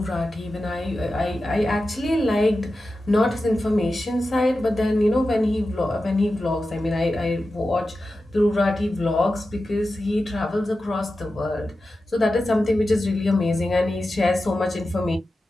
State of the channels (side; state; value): both; normal; correlation 0.92